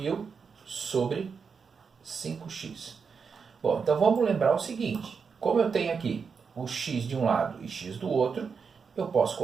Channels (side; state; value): left; quieter; 5.8 dB